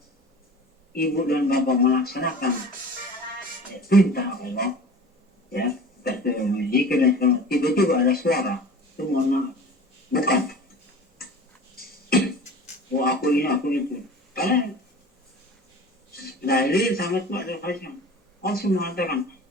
Ibu dan Bapak melaksanakan perintah Allah, ya, jika tiba-tiba ada suara, itu mohon maaf, bukan. Oh aku ini, aku itu. Karena dalil sangat kuat dari Faisal. Allah mengatakan,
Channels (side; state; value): both; normal; correlation 0.39